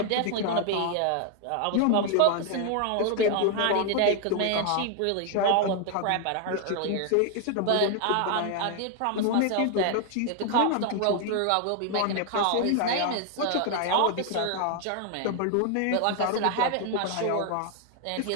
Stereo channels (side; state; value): both; different; correlation 0.00